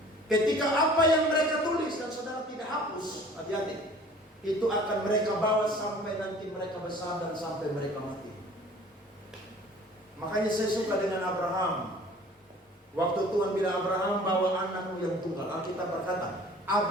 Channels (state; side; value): normal; both; correlation 0.49